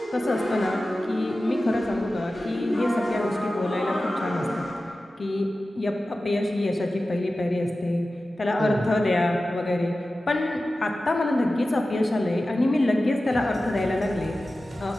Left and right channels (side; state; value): both; normal; correlation 0.95